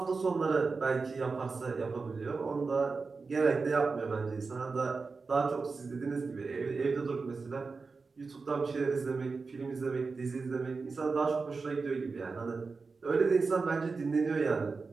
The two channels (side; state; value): left; quieter; 4.4 dB